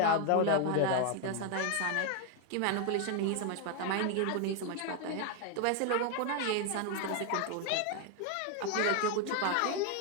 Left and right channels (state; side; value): different; both; correlation 0.01